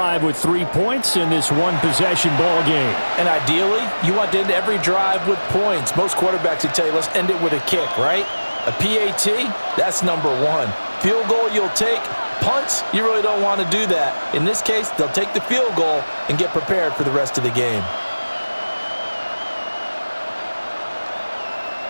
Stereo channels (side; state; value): both; inverted; correlation -1.00